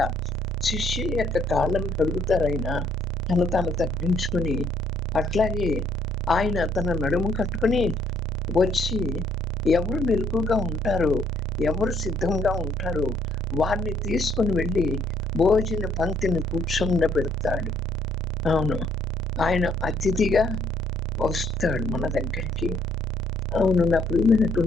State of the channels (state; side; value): normal; both; correlation 0.66